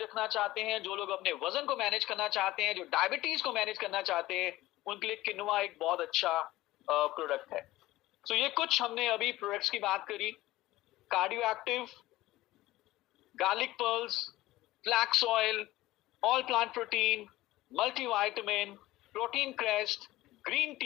चाहते हैं, जो लोग अपने वजन को मैनेज करना चाहते हैं, जो डायबिटीज को मैनेज करना चाहते हैं, उनके लिए किनुआ एक बहुत अच्छा प्रोडक्ट है। तो ये कुछ हमने अभी प्रोडक्ट्स की बात करी। Cardio active, garlic pearls, flax oil, all plant protein, multivitamin, protein crest, green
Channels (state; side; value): quieter; right; 17.2 dB